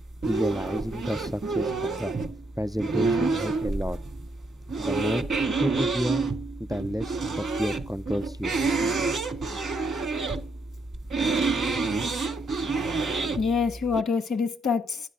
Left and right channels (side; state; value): both; normal; correlation 0.75